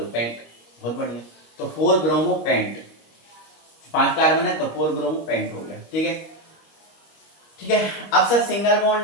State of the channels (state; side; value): late; right; 25 ms